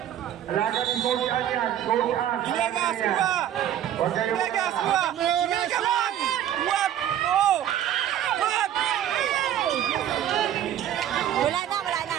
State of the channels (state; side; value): quieter; left; 10.9 dB